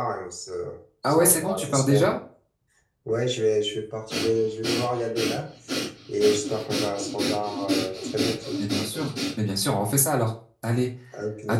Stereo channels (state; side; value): identical; both; correlation 1.00